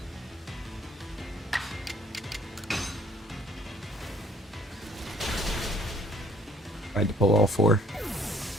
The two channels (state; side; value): normal; both; correlation 0.60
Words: Tried to pull all four.